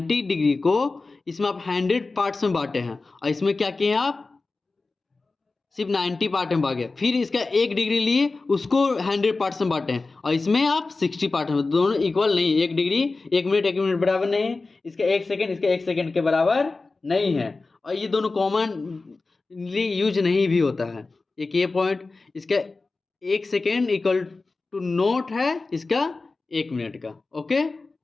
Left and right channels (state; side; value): quieter; right; 3.7 dB